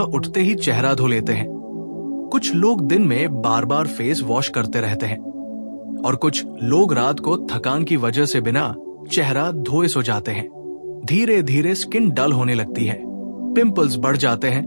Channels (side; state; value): both; inverted; correlation -1.00